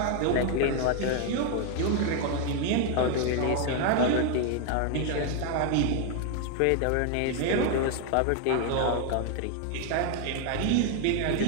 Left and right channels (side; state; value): both; different; correlation 0.00